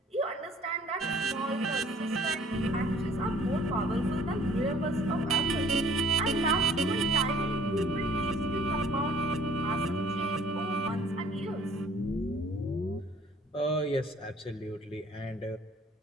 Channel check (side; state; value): both; normal; correlation 0.56